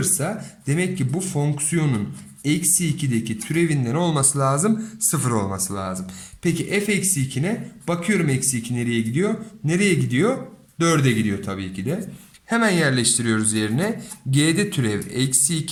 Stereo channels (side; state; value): both; identical; correlation 1.00